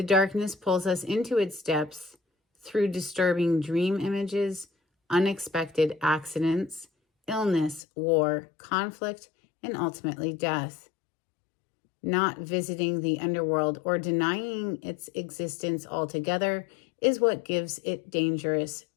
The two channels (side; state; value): right; drops out; at 7.8 s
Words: darkness pulls us into its depths through disturbing dream images, unexpected accidents, illness, war, conflict, and ultimately death. Not visiting the underworld or denying its existence altogether is what gives it dangerous